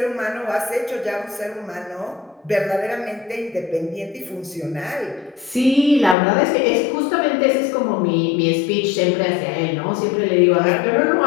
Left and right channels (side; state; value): right; drops out; at 6.2 s